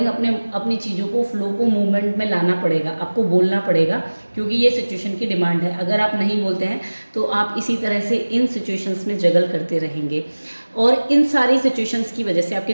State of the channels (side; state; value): both; inverted; correlation -1.00